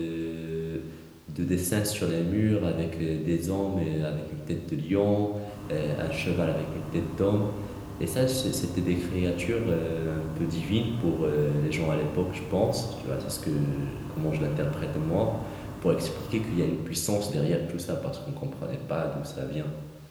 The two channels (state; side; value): identical; both; correlation 1.00